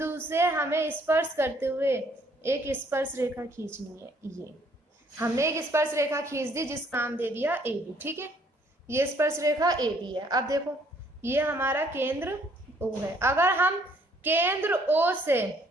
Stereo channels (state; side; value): normal; both; correlation 0.64